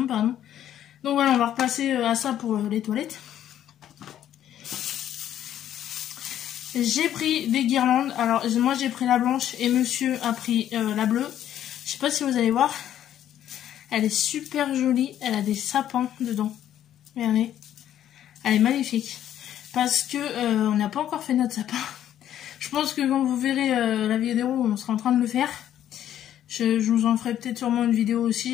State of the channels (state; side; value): quieter; right; 11.1 dB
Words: pardon. Donc voilà, on va repasser à ça pour les toilettes. J'ai pris des guirlandes. Alors moi j'ai pris la blanche et monsieur a pris la bleue. Je sais pas si vous allez voir. Elle est super jolie. Elle a des sapins dedans. Regardez. Elle est magnifique. Parce que on n'a pas encore fait notre sapin. Je pense que quand vous verrez la vidéo, on sera en train de le faire. Je vous en ferai peut-être sûrement une vidéo